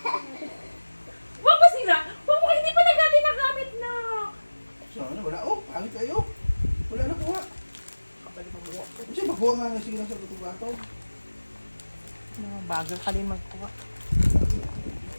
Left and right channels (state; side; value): inverted; both; correlation -1.00